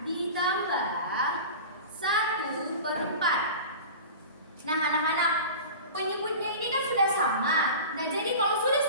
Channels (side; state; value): both; inverted; correlation -0.35